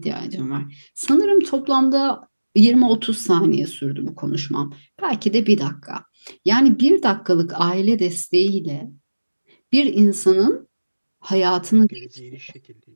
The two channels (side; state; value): both; inverted; correlation -1.00